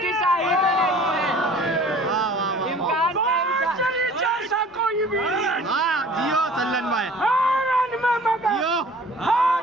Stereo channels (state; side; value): normal; both; correlation 0.48